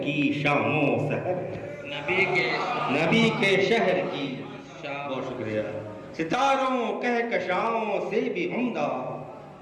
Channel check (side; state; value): both; identical; correlation 1.00